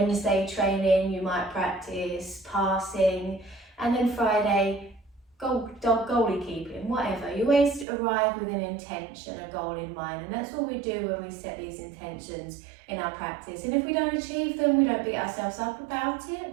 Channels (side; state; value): left; drops out; at 7.9 s